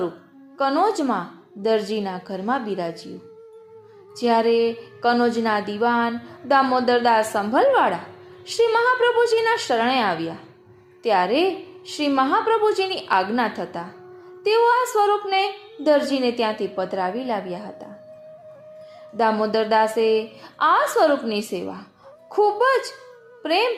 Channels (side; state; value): both; identical; correlation 1.00